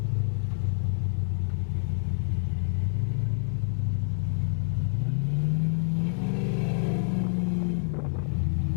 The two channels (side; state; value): right; silent; 60 dB below the other